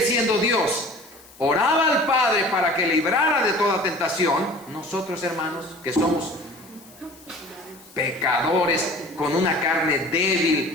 siendo Dios, oraba al Padre para que librara de toda tentación, nosotros, hermanos, que somos pecadores, con una carne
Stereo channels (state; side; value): noise; left; hiss, 24 dB below the sound